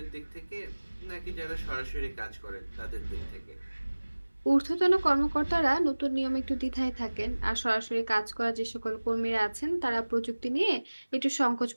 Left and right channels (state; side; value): inverted; both; correlation -1.00